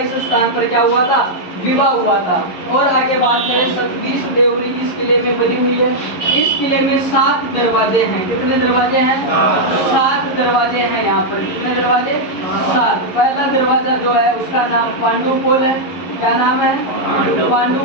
इस स्थान पर क्या हुआ था? विवाह हुआ था। और आगे बात करें सतबीस देवरी इस किले में बनी हुई है। इस किले में 7 दरवाजे हैं। कितने दरवाजे हैं? 7 दरवाजे हैं यहाँ पर। कितने दरवाजे? 7। पहला दरवाजा जो है उसका नाम पांडुपोल है। क्या नाम है?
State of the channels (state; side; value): late; right; 11 ms